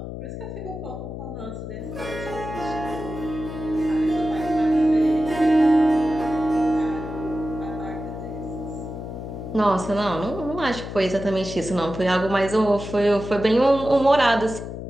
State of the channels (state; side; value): noise; left; hum, 8 dB below the sound